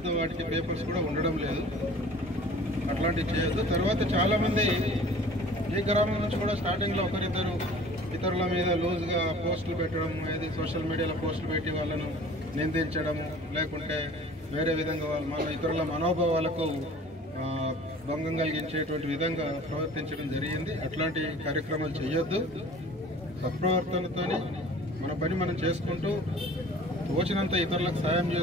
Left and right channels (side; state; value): both; normal; correlation 0.46